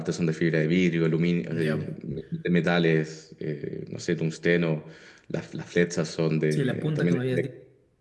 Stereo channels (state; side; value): identical; both; correlation 1.00